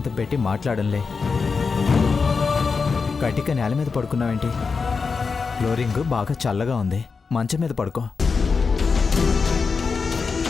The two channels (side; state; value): right; quieter; 5.0 dB